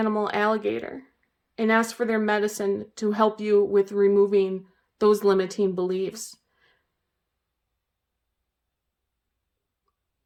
alligator and ask for their medicine to help you with removing those limiting beliefs.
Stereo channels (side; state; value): both; identical; correlation 1.00